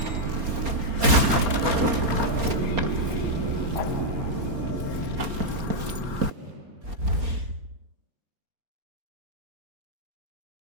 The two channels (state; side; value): late; left; 4.3 ms